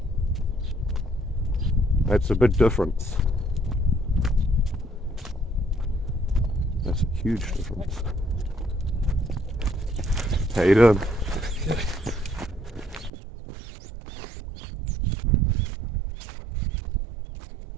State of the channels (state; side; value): drops out; left; at 13.1 s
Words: That's a big difference. That's a huge difference. How you doing?